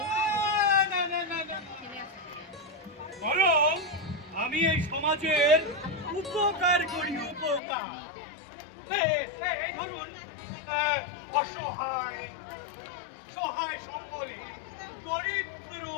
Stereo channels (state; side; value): drops out; right; at 7.6 s